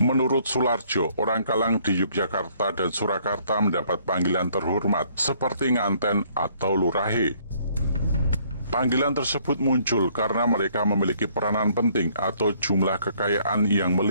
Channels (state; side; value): inverted; both; correlation -0.64